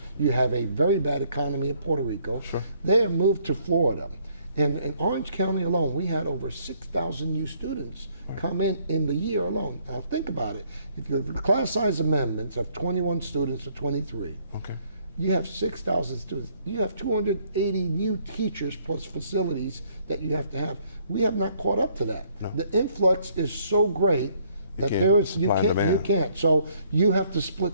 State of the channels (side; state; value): both; inverted; correlation -0.65